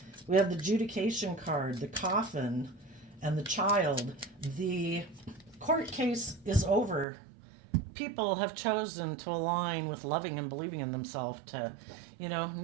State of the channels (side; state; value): left; drops out; at 7.1 s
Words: We have the adjudication card, the coffin, and the child. The court case is over. People have chosen to align with loving and believing in themselves to,